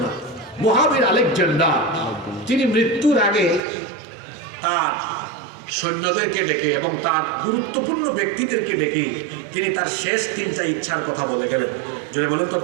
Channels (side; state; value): left; drops out; at 3.6 s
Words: মহাবীর আলেকজান্ডার তিনি মৃত্যুর আগে তার সৈন্যদেরকে ডেকে এবং তার গুরুত্বপূর্ণ ব্যক্তিদেরকে ডেকে তিনি তার শেষ তিনটা ইচ্ছার কথা বলে গেলেন। জোরে বলেন তো